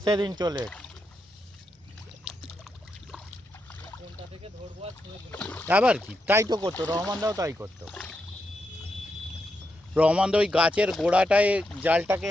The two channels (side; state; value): both; normal; correlation 0.84